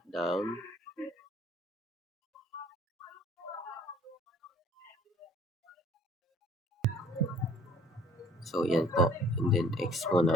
So, yan po. And then, X po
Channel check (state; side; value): normal; both; correlation 0.57